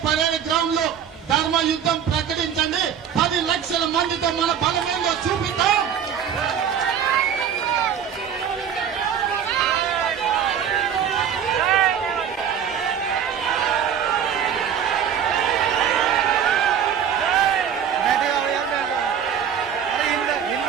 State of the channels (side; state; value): left; quieter; 8.4 dB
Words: పరేడ్ గ్రౌండ్ లో ధర్మ యుద్ధం ప్రకటించండి. 10 లక్షల మందితో మన బలమేందో చూపిద్దాం.